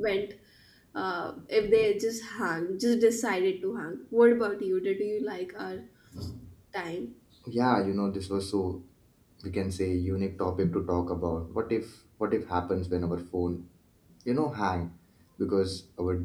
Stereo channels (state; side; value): identical; both; correlation 1.00